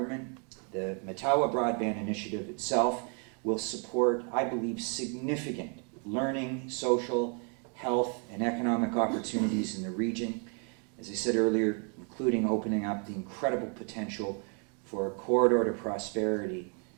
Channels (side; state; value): left; quieter; 39.1 dB